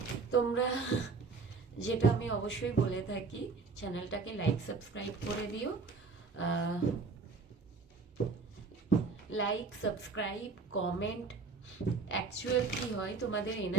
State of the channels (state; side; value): quieter; left; 4.4 dB